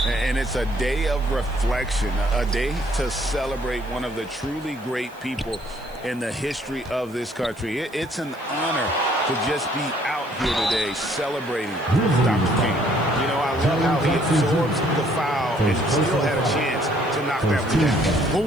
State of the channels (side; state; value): right; noise; hiss, 27 dB below the sound